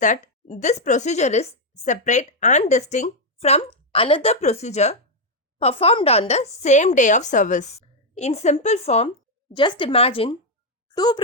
that this procedure is separate and distinct from another procedure performed on the same day of service. In simple form, just imagine two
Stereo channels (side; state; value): both; normal; correlation 0.01